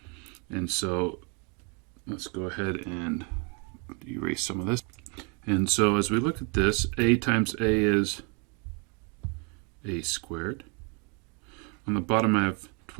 And so let's go ahead and erase some of this. And so as we look at this, a times a is a squared. On the bottom I have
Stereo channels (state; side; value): quieter; left; 34.2 dB